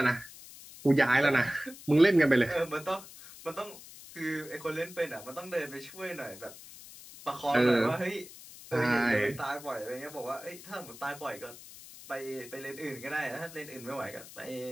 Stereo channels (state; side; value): noise; left; hiss, 17 dB below the sound